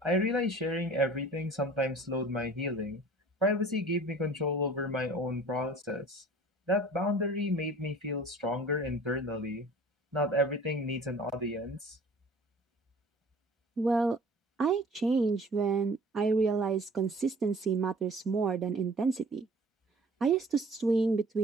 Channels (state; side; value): normal; both; correlation 0.47